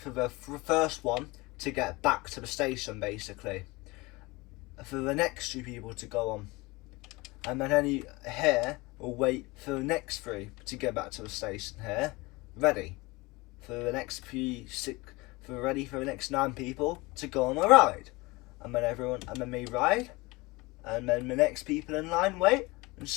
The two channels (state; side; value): quieter; right; 23.4 dB